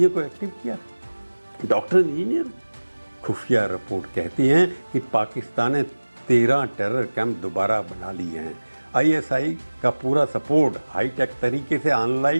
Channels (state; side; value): inverted; both; correlation -1.00